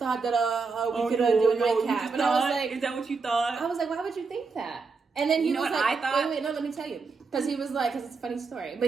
that we could do a nightcap." And I was like, "Is that what you thought?" I was like, "Why would you think that?" And then he was like, I thought? Wait, no, let me tell you, because he was like, because it's a funny story,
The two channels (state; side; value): quieter; left; 4.6 dB